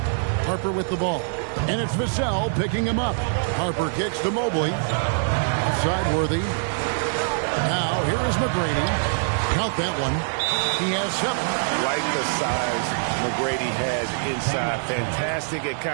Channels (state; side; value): silent; left; 63 dB below the other